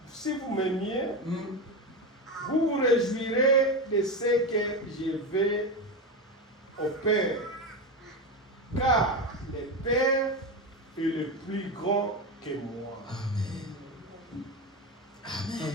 vous vous réjouirez de ce que je vais au Père. Car le Père est le plus grand que moi. Amen.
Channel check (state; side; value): normal; both; correlation 0.18